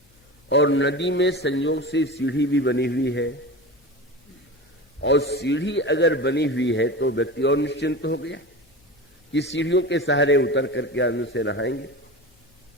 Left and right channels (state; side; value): normal; both; correlation 0.29